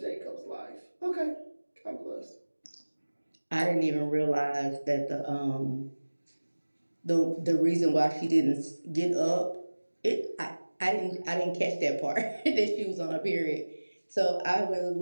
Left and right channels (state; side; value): inverted; both; correlation -1.00